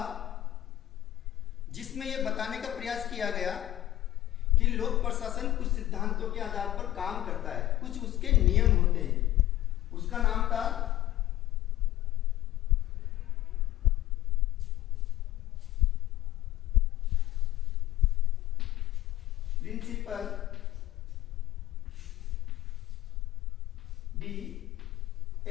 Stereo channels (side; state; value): right; quieter; 14.5 dB